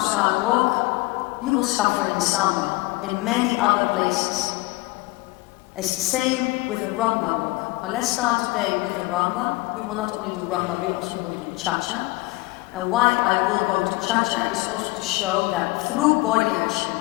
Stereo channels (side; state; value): right; quieter; 22.4 dB